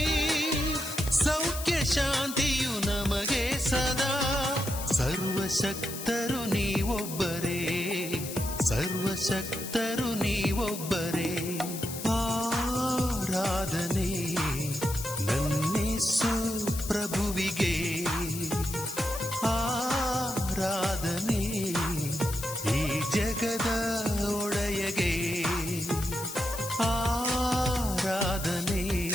ಸೌಖ್ಯ ಶಾಂತಿಯು ನಮಗೆ ಸದಾ ಸರ್ವಶಕ್ತರು ನೀವೊಬ್ಬರೇ ಸರ್ವಶಕ್ತರು ನೀವೊಬ್ಬರೇ ಆರಾಧನೆ ನನ್ನೇಸು ಪ್ರಭುವಿಗೆ ಆರಾಧನೆ ಈ ಜಗದ ಒಡೆಯಗೆ ಆರಾಧನೆ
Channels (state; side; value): noise; left; hiss, 9 dB below the sound